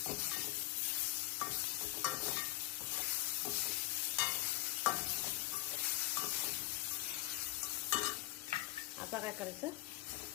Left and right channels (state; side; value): quieter; right; 17.1 dB